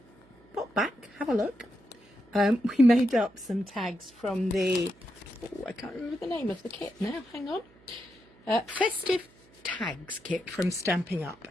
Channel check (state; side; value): noise; right; hum, 28 dB below the sound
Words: pop back, have a look. We made up some tags from the, I can't remember the name of the kit now, hang on. Festive Tags kit from Stampin' Up.